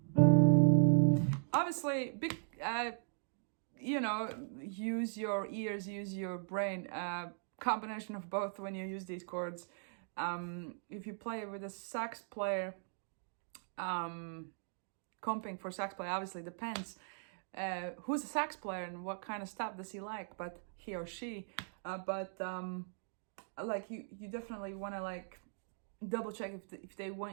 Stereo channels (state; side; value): silent; left; digital silence